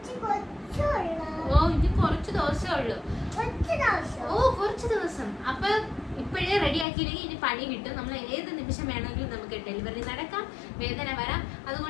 ഇനി കുറച്ച് ദിവസമേ ഉള്ളൂ. കുറച്ച് ദിവസം. അപ്പൊ ഇപ്പോഴേ റെഡിയാക്കിയില്ലെങ്കിൽ ഇനി പണി കിട്ടും. നമ്മൾ ഏത് നിമിഷം വേണമെങ്കിലും നമുക്ക് ഡെലിവറി നടക്കാം, വേദന വരാം.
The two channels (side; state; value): right; drops out; at 6.9 s